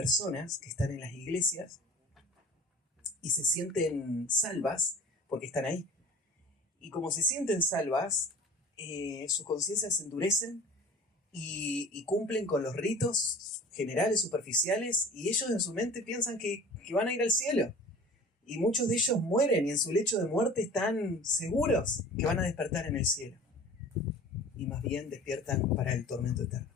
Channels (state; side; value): normal; both; correlation 0.42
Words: que están en las iglesias y se sienten salvas porque están ahí. Y como se sienten salvas, sus conciencias se endurecen y cumplen con los ritos generales, superficiales, y ellos en su mente piensan que van a ir al cielo. Y muchos de ellos mueren y en su lecho de muerte están seguros que van a despertar en el cielo. Y más bien despiertan para el tormento eterno.